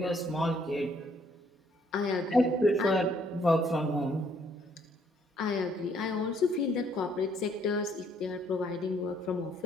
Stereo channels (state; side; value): normal; both; correlation 0.66